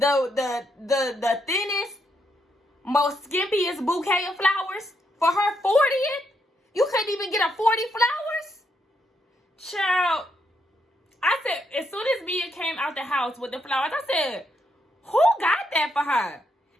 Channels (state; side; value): normal; both; correlation 0.77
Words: the thinnest, most skimpiest bouquet of flowers for her 40th? You couldn't even get a 40 flowers? Child, I said, as soon as Mia came out the house with the flowers, I said, who got that for her?